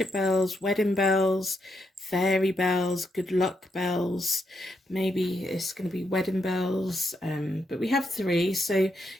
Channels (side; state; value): both; normal; correlation 0.80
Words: bells, wedding bells, fairy bells, good luck bells. Maybe it's going to be wedding bells. But we have 3, so